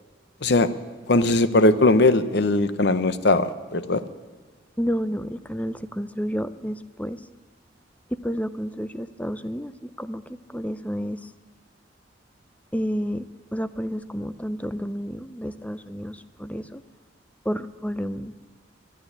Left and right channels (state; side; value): normal; both; correlation 0.29